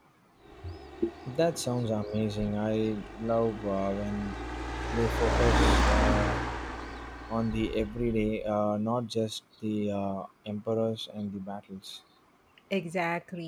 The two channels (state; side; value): identical; both; correlation 1.00